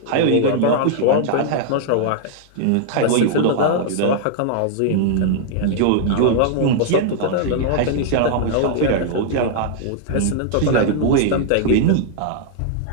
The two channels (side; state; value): both; different; correlation -0.01